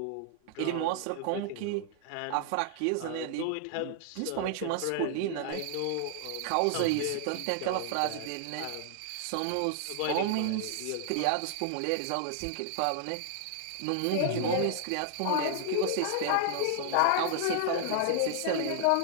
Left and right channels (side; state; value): both; different; correlation -0.01